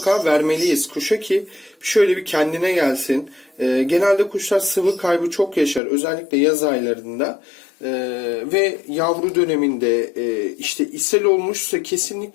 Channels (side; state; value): right; drops out; at 5.8 s